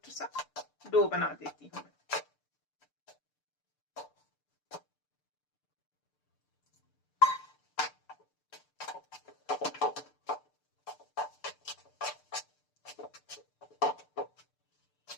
सा डो बना देती हूँ।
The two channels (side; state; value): right; late; 6.8 ms